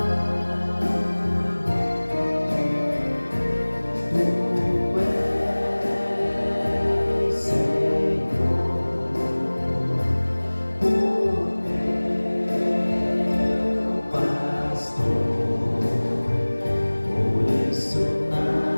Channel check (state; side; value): inverted; both; correlation -1.00